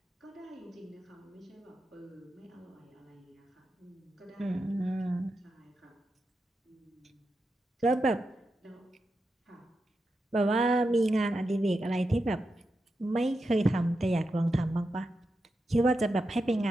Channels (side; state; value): both; normal; correlation 0.88